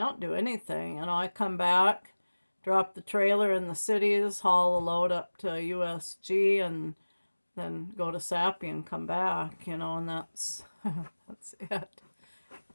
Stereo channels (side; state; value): both; inverted; correlation -1.00